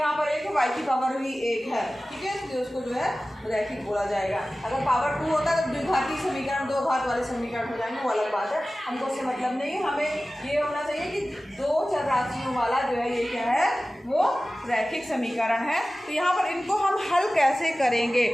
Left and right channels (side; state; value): both; normal; correlation 0.96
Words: पर 1 है, y की पावर भी 1 है, ठीक है, तो उसको जो है रैखिक बोला जाएगा। अगर पावर 2 होता है तो द्विघाती समीकरण, दो घात वाले समीकरण हो जाएंगे, वो अलग बात है, हमको उससे मतलब नहीं है। हमें ये होना चाहिए कि दो चर राशियों वाला जो है ये क्या है वो रैखिक समीकरण है। तो यहाँ पर इनको हम हल कैसे करेंगे?